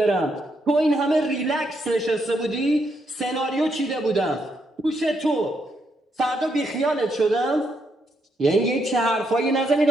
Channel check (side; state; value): both; normal; correlation 0.78